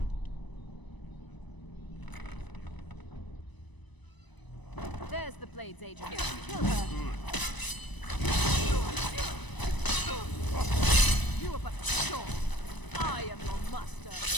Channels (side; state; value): right; late; 1.0 ms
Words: There's the Blades agent. Kill her. You are but a short. I am your master.